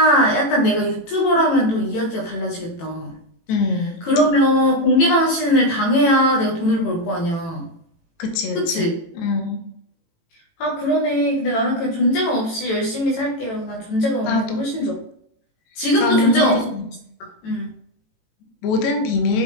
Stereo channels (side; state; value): right; late; 18 ms